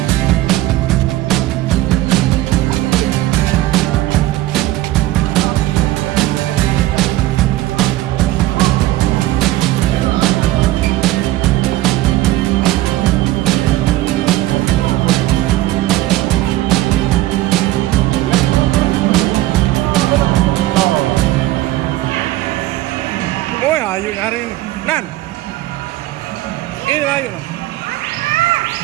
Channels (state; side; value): quieter; left; 16.4 dB